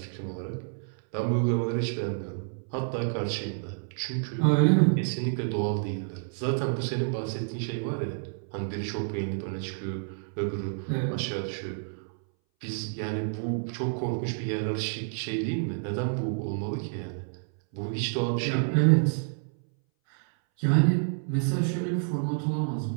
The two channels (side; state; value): left; silent; 59 dB below the other